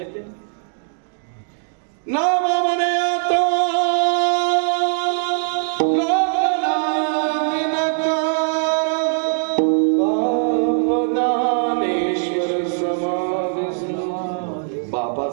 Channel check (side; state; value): left; silent; digital silence